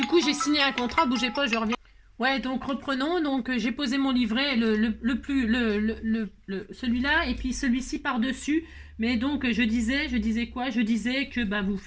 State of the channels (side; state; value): both; identical; correlation 1.00